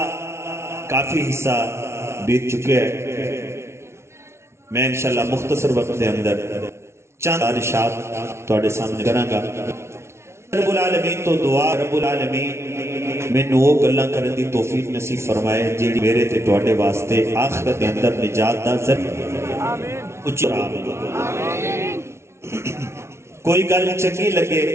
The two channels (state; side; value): late; left; 0.13 ms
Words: کافی حصہ بیت چکے ہیں میں انشاءاللہ مختصر وقت دے اندر چند ارشاد تواڈے سامنے کراں گا رب العالمین تو دعا رب العالمین مینوں وہ گلاں کرن دی توفیق نصیب فرمائے جیڑی میرے تے تواڈے واسطے آخرت دے اندر نجات دا ذریعہ آمین کوئی گل چنگی لگے